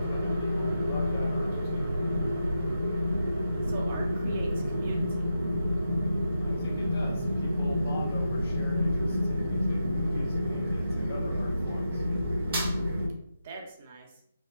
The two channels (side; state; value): both; inverted; correlation -0.88